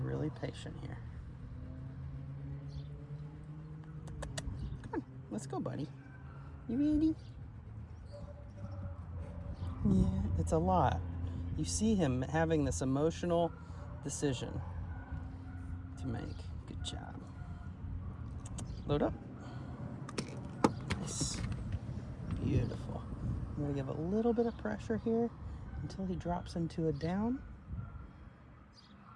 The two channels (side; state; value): both; identical; correlation 1.00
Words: patient here. Come on, let's go, buddy. You ready? Yeah, it's a lot. You see him having this emotional decision to make. Good job. Load up. Nice. Beautiful. I'm going to give a little bit of pressure here until he drops into a down.